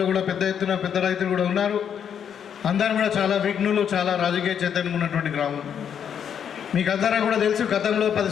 కూడా పెద్ద ఎత్తున పెద్ద రైతులు కూడా ఉన్నారు. అందరూ కూడా చాలా విఘ్నులు, చాలా రాజకీయ చైతన్యం ఉన్నటువంటి గ్రామం. మీకు అందరూ కూడా తెలుసు గతంలో 10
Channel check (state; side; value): quieter; right; 8.3 dB